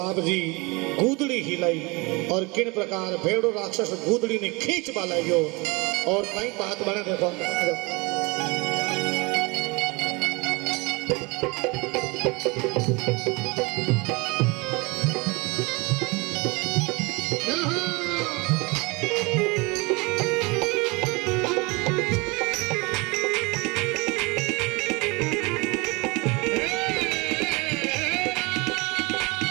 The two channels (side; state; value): left; quieter; 26.7 dB